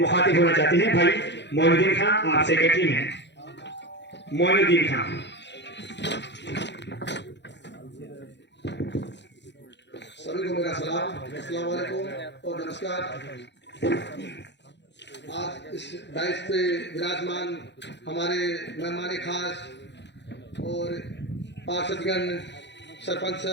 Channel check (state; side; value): late; right; 0.51 ms